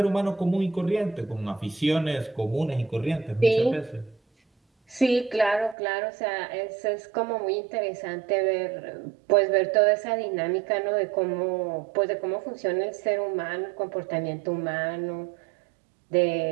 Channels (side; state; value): left; drops out; at 5.8 s